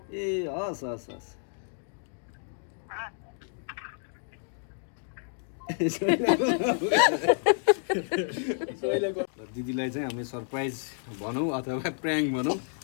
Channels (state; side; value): silent; right; digital silence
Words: ए हस् हस् हस् दिदीलाई चाहिँ हामीले सरप्राइज भनौँ अथवा प्र्याङ्क भनौँ